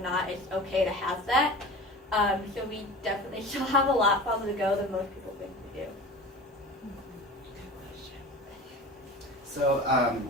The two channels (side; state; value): both; normal; correlation 0.35